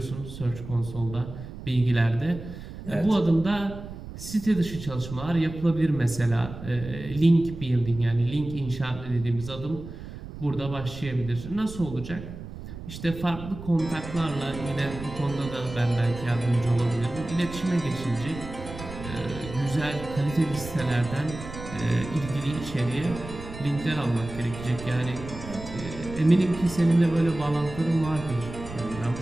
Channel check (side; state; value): right; noise; rumble, 12 dB below the sound